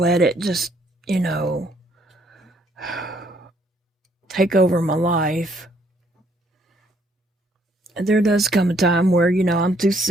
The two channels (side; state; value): both; normal; correlation 0.67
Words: it just, take over my life. There does come a time where, I'm too